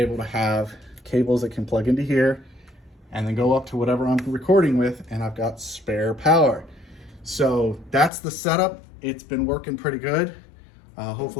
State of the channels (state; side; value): drops out; right; at 8.1 s